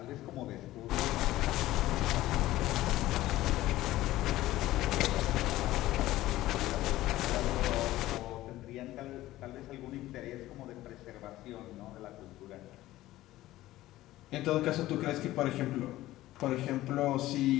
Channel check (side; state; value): right; quieter; 16.0 dB